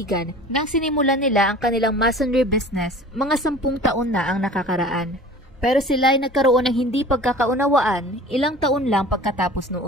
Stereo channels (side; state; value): both; normal; correlation 0.43